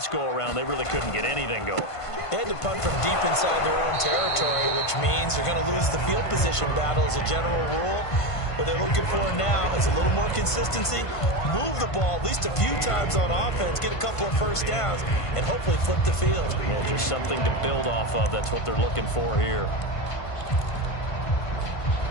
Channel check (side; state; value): right; late; 1.5 ms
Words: go-around, they really couldn't get anything going. They had to punt from deep inside their own territory, which means they're going to lose the field position battle as a general rule. What they're looking for now is a little more consistency, move the ball at least a few times on offense, get a couple of 1st downs, and hopefully flip the field. Yeah, just something to build off of. That's what they're looking for here.